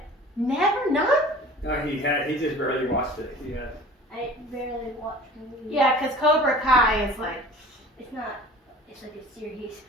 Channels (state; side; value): normal; both; correlation 0.43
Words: never none? No, he just barely watched it. He had. I barely watch movies. Yeah, because Cobra Kai is like, It's not. It's like a series.